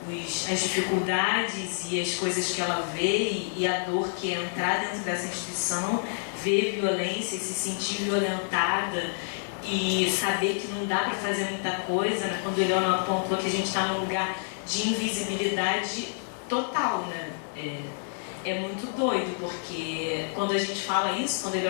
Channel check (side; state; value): right; silent; digital silence